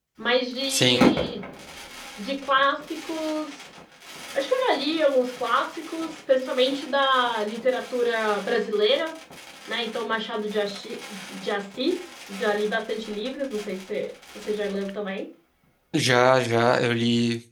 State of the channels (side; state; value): both; identical; correlation 1.00